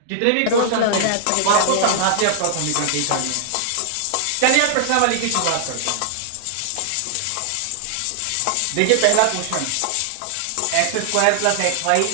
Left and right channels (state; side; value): different; both; correlation -0.01